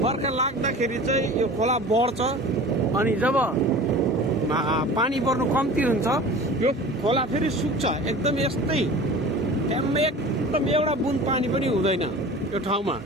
बर्खा लाग्दाखेरि चाहिँ यो खोला बढ्छ अनि जब पानी पर्नु कम्ती हुन्छ यो खोला फेरि सुक्छ। एकदम यस्तै एकदम एउटा बुन पानी पनि हुँदैन यो ठाउँमा।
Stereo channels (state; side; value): normal; both; correlation 0.39